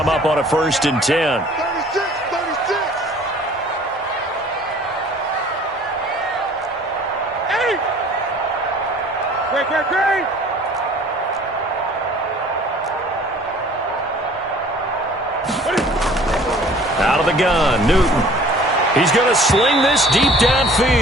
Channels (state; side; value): normal; both; correlation 0.51